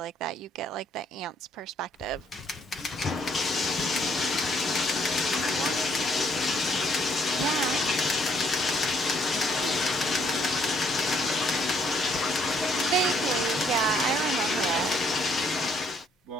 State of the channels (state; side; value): normal; both; correlation 0.68